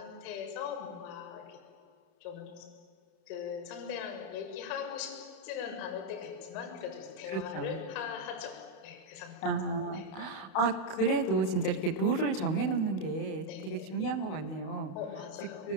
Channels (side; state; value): right; late; 30 ms